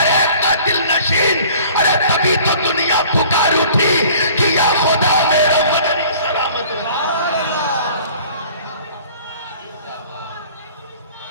ایک کا دل نشین۔ ارے تبھی تو دنیا پکار اٹھی کہ یا خدا میرا مدنی سلامت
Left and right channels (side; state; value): both; inverted; correlation -0.50